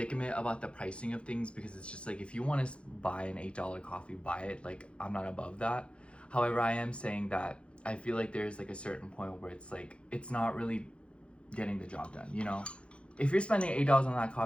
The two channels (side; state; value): right; late; 0.059 ms